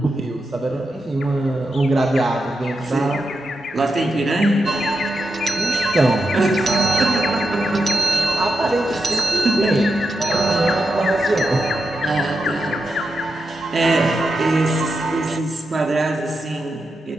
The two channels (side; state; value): both; normal; correlation 0.87